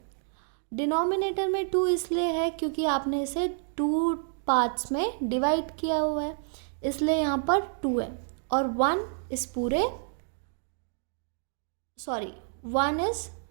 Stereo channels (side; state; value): left; silent; digital silence